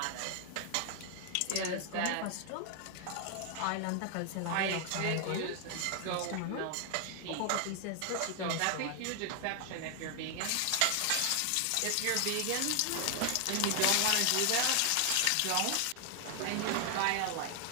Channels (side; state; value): both; different; correlation 0.00